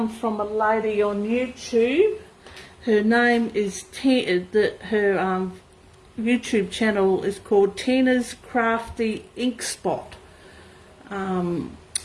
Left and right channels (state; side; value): identical; both; correlation 1.00